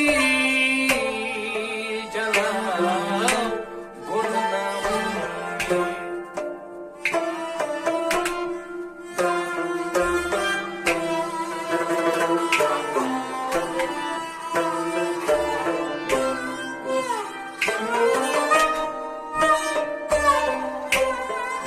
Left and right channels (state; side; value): identical; both; correlation 1.00